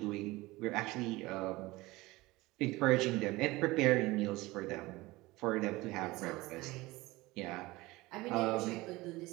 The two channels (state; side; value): quieter; left; 20.5 dB